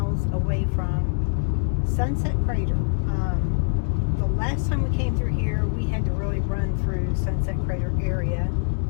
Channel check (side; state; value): right; silent; digital silence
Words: away from Sunset Crater. The last time we came through here, we had to really run through Sunset Crater area.